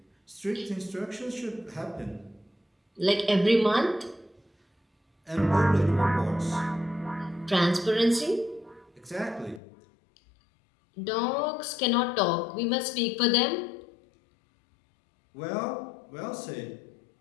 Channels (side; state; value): right; drops out; at 9.6 s